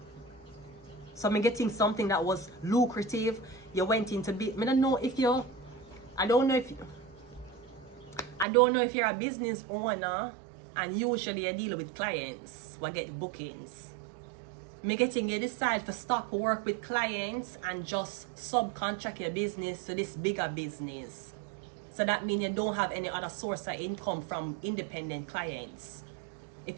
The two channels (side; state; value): left; drops out; at 8.5 s